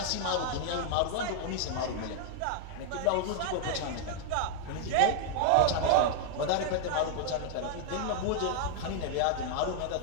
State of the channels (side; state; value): both; different; correlation -0.01